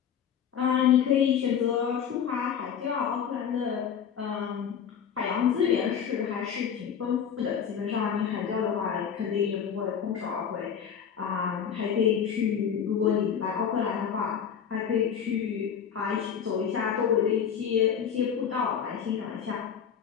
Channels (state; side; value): quieter; right; 7.9 dB